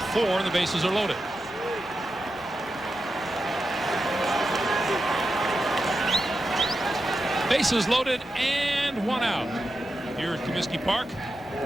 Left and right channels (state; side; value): normal; both; correlation 0.89